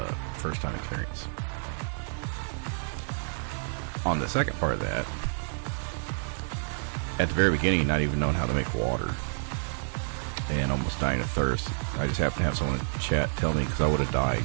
first time experience. on the second part of that, at the very beginning, not even knowing how to make water and almost dying of thirst, I just happened to have someone in chat tell me, because I would have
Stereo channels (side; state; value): left; silent; 57 dB below the other